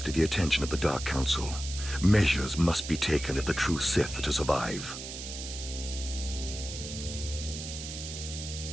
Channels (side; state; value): right; noise; hiss, 8 dB below the sound